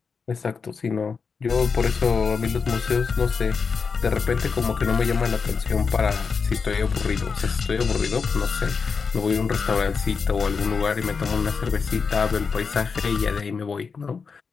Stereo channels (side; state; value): right; quieter; 5.3 dB